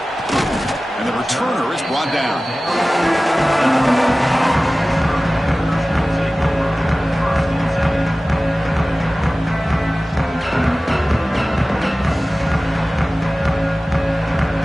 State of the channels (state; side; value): normal; both; correlation 0.97